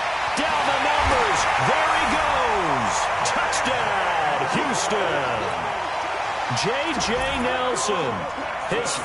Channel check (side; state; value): both; identical; correlation 1.00